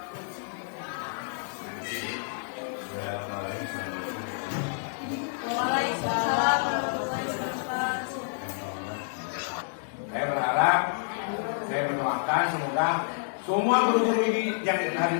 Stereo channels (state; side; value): silent; right; digital silence